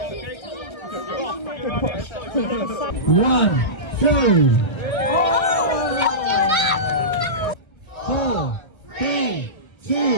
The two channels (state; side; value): late; right; 1.3 ms